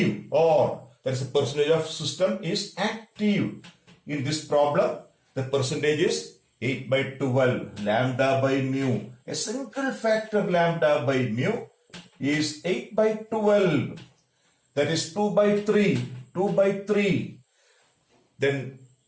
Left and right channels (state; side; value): identical; both; correlation 1.00